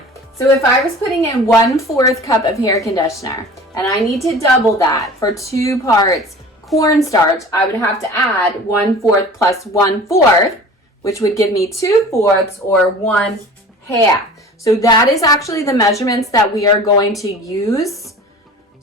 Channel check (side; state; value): both; normal; correlation 0.41